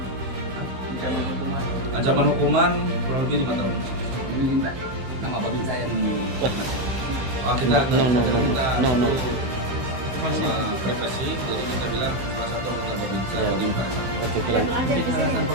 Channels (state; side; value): late; left; 16 ms